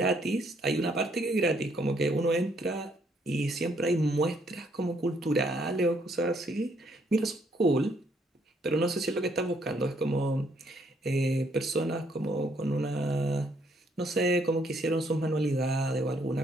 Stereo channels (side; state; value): both; normal; correlation 0.69